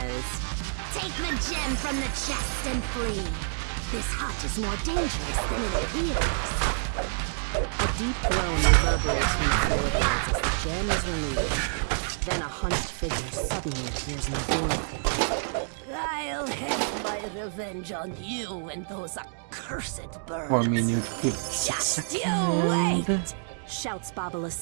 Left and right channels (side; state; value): left; silent; digital silence